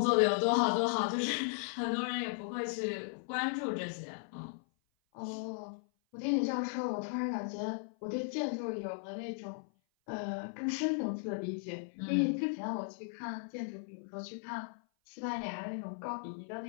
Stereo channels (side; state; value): right; silent; 54 dB below the other